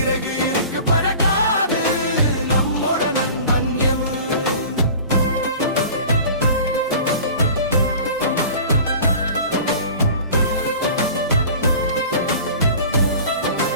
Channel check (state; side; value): inverted; both; correlation -0.41